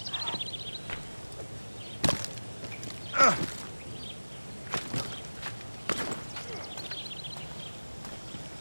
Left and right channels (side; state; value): both; inverted; correlation -1.00